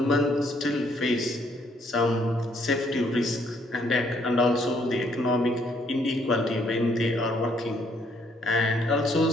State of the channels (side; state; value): both; normal; correlation 0.68